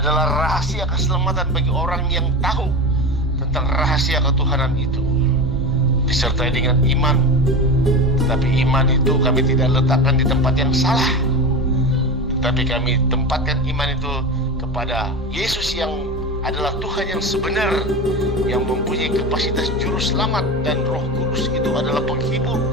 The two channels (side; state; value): both; normal; correlation 0.24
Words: rahasia keselamatan bagi orang yang tahu tentang rahasia ketuhanan itu, disertai dengan iman. Tetapi iman itu kami tidak letakkan di tempat yang salah, tetapi kami tempatkan iman itu kepada Yesus yang adalah Tuhan yang sebenar, yang mempunyai kapasitas juru selamat, dan Roh Kudus itu adalah penghibur.